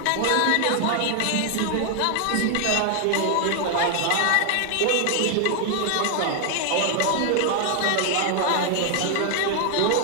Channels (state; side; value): different; both; correlation 0.00